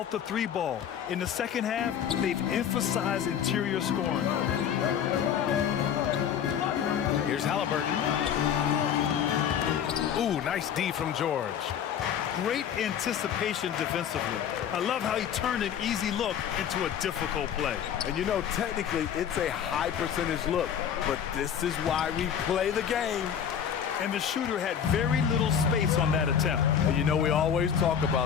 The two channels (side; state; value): right; quieter; 8.5 dB